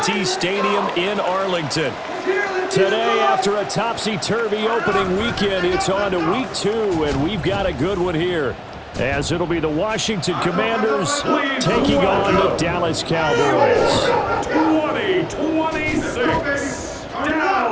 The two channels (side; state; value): both; identical; correlation 1.00